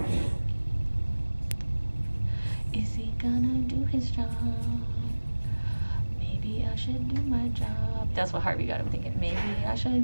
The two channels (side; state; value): both; inverted; correlation -1.00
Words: Is he gonna do his job? Maybe I should do my job. That's what Harvey got him thinking. Maybe I should